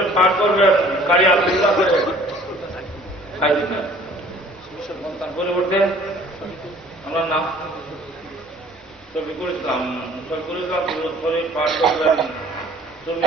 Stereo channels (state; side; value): normal; both; correlation 0.53